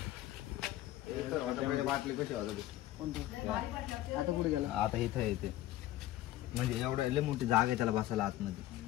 बाटली कशी वाजवली आता पुढे गेला आता इथं येते म्हणजे एवढं लय मोठी जागा आहे त्याला बसायला आतमध्ये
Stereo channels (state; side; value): quieter; right; 14.8 dB